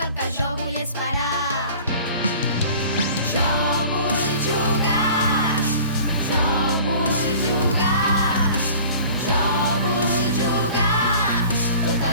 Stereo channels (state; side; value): inverted; both; correlation -0.45